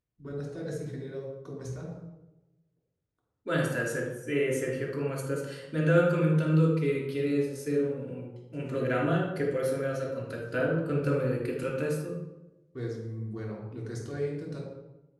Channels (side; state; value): both; identical; correlation 1.00